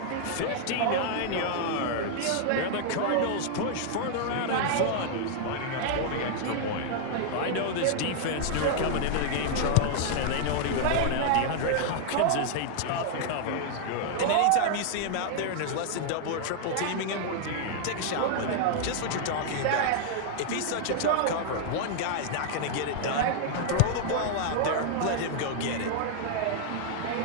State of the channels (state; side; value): different; both; correlation -0.01